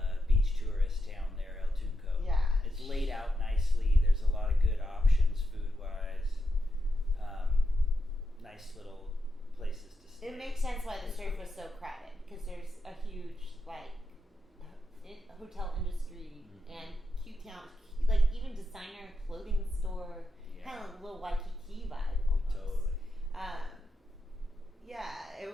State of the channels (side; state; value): both; normal; correlation 0.85